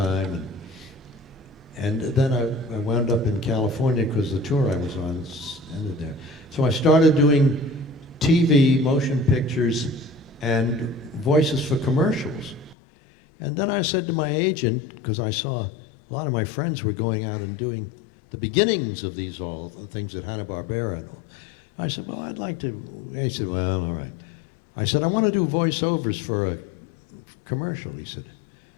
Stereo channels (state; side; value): drops out; right; at 12.8 s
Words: and then I wound up in California because the tour I was on ended there. So I started doing TV, motion pictures, and voices for commercials. And then I said to my agent, because I saw a lot of my friends were going out and doing the beginnings of these all the things at Hanna-Barbera. I said, well, I'd like to. He said, well, all right. I said, I want to do voiceovers for a commercial. He said,